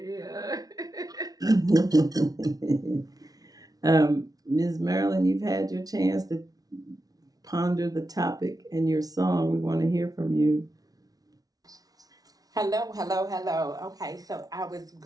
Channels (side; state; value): left; late; 0.18 ms